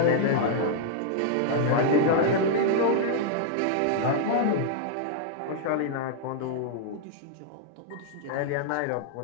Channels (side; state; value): both; different; correlation -0.01